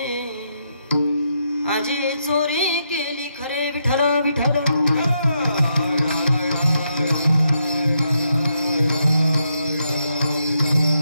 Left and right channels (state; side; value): inverted; both; correlation -0.80